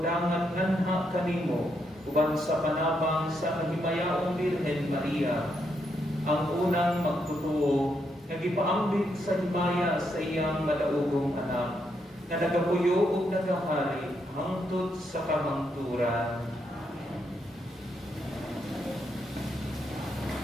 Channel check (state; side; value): normal; both; correlation 0.79